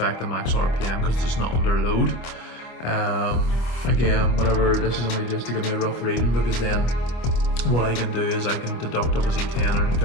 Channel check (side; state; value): right; late; 25 ms